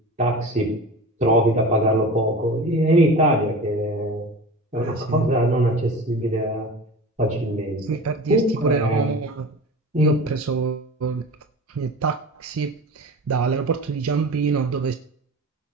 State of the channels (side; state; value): both; normal; correlation 0.34